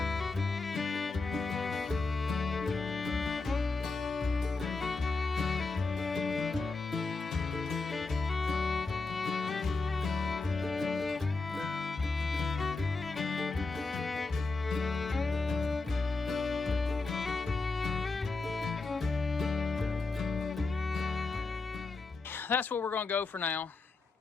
That's what we're going to go for now.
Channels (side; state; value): right; quieter; 3.8 dB